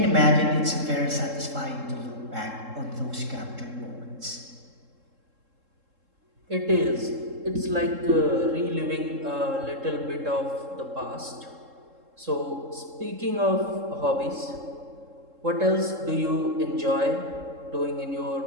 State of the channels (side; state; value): left; late; 3.7 ms